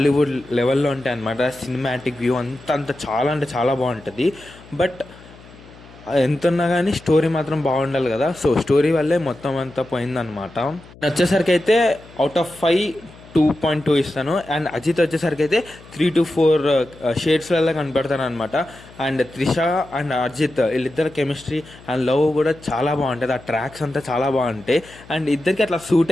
లెవెల్లో ఉంటాయి అనమాట. సినిమాటిక్ వ్యూ అంత చాలా అంటే చాలా బాగుంటుంది. బట్ ఎంత ఉన్నా కానీ స్టోరీ మాత్రం బాగుండాలి కదా. సో స్టోరీ వల్లే మొత్తం అంతా పోయిందనమాట. వచ్చేసరికి అయితే అవుట్ ఆఫ్ 5 2.2 ఇస్తాను. అండ్ అజిత్ వచ్చేసరికి అయితే 3 to 4 షేడ్స్లలో కనపడతాను అనమాట. అండ్ త్రిష అండ్ అజిత్ వీళ్ళిద్దరు కెమిస్ట్రీ అండ్ లవ్ కూడా చాలా బాగుంటుంది. ఆ ట్రాక్స్ అంతా చాలా బాగుంటాయి. అండ్ ఇద్దరికి అట్లా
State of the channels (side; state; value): left; noise; hum, 22 dB below the sound